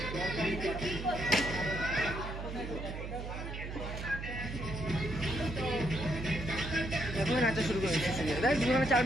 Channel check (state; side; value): noise; right; hum, 7 dB below the sound